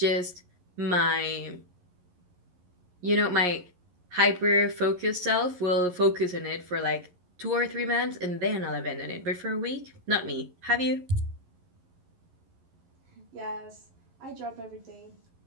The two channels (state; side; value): late; left; 11 ms